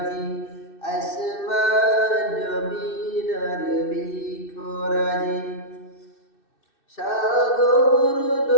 আসমান জমিন আর বৃক্ষরাজি। সাগর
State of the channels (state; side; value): late; right; 2.6 ms